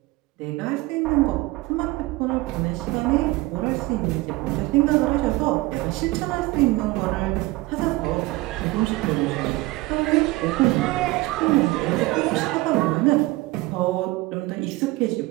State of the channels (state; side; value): quieter; left; 20.5 dB